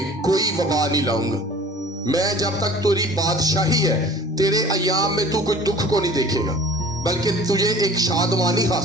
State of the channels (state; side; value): normal; both; correlation 0.46